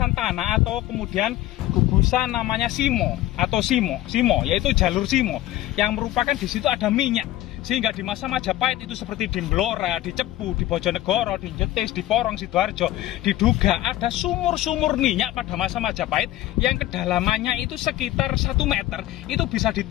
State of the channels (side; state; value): right; quieter; 15.0 dB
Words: tanah atau kemudian gugusan namanya simo atau simo, yaitu jalur simo yang merupakan di situ ada minyak. Sehingga di masa Majapahit itu seperti di Blora, di Cepu, di Bojonegoro, di Jetis, di Porong Sidoarjo, diduga ada sumur-sumur minyak pada masa Majapahit yang kedalamannya itu sekitar 1 meter, itu bisa